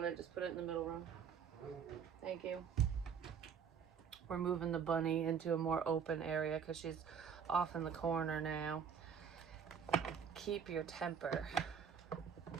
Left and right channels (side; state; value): left; quieter; 7.1 dB